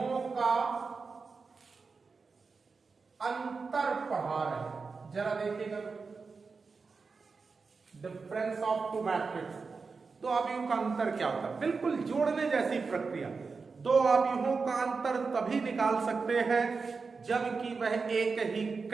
का अंतर पढ़ा रहे हैं, जरा देखिएगा। Difference of two matrix. दो आव्यूहों का अंतर क्या होता है? बिल्कुल जोड़ने जैसी प्रक्रिया। दो आव्यूहों का अंतर तभी निकाल सकते हैं जबकि वह एक ही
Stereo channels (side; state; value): left; quieter; 4.7 dB